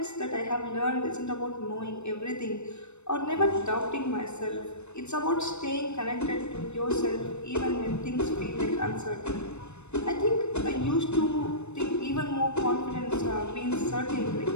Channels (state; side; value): late; right; 0.81 ms